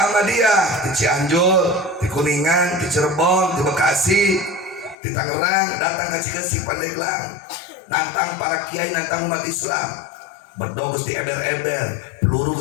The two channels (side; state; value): right; drops out; at 5.0 s